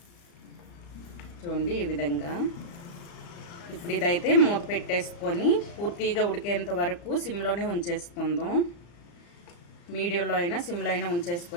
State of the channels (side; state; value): right; late; 35 ms